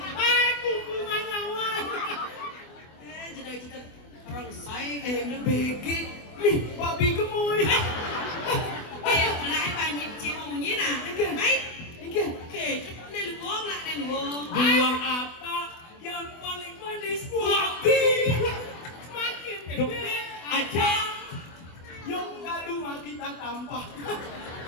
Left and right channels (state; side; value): late; right; 24 ms